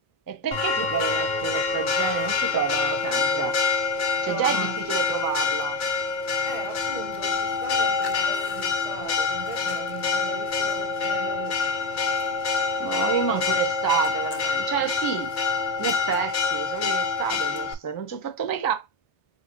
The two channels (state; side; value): late; right; 2.1 ms